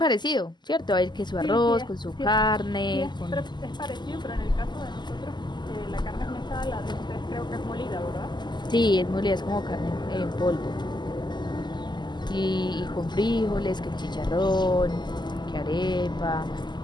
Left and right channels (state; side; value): late; right; 0.21 ms